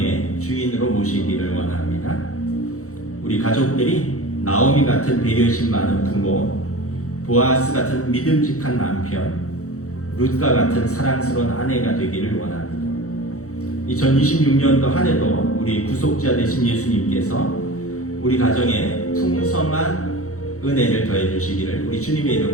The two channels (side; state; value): right; late; 0.65 ms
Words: 주인으로 모시기를 원합니다. 우리 가족들이 나오미 같은 배려심 많은 부모, 보아스 같은 믿음직한 남편, 룻과 같은 사랑스러운 아내가 되기를 원합니다. 2026년도 한 해도 우리 구속자 되신 예수님께서 우리 가정에 풍성한 은혜를 더해 주시기를 우리 주님의